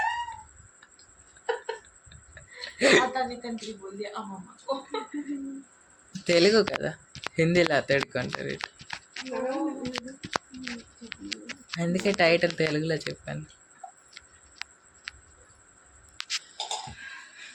తెలుగు కదా, హిందీలో అతడుకుంటారు. అందుకే టైటిల్ తెలుగులో చెప్పాను.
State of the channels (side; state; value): both; identical; correlation 1.00